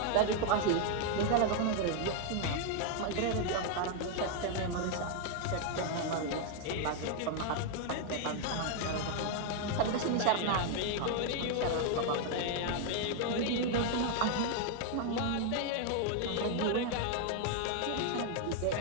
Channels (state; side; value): different; both; correlation 0.00